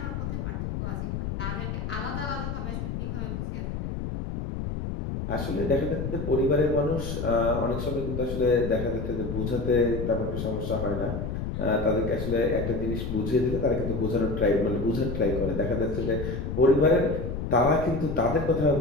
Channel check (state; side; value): noise; left; rumble, 4 dB below the sound